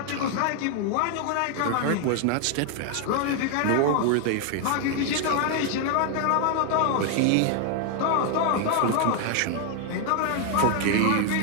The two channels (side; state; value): both; different; correlation 0.00